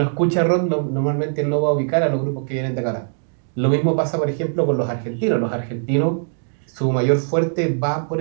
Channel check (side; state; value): left; silent; digital silence